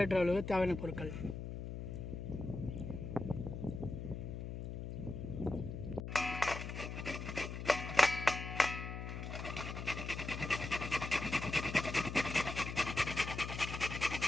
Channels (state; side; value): noise; left; hum, 6 dB below the sound